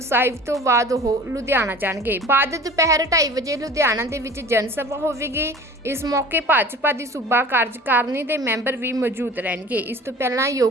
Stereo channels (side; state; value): both; normal; correlation 0.42